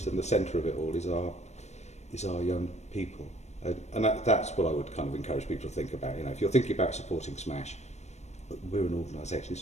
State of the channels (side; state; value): right; late; 0.32 ms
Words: and the centre of it all, is our young people. And that's what I would kind of encourage people to think about. You know, if you're thinking about supporting Smash, we're an organisation.